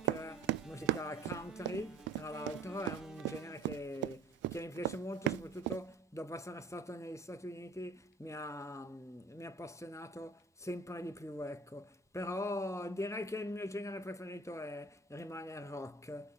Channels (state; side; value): quieter; left; 3.4 dB